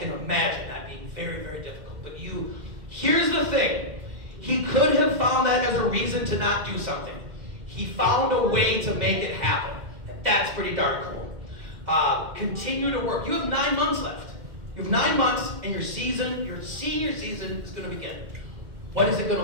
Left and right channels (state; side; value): late; left; 2.1 ms